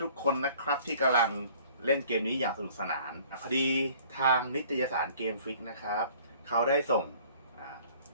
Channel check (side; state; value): both; inverted; correlation -0.53